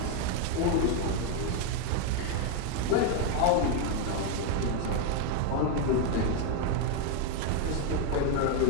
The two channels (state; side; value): different; both; correlation 0.01